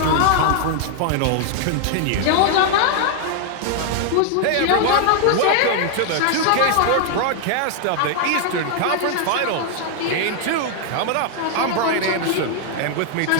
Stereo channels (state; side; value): different; both; correlation 0.00